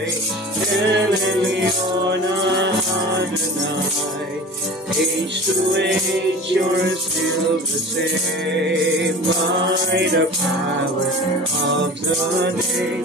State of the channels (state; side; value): normal; both; correlation 0.36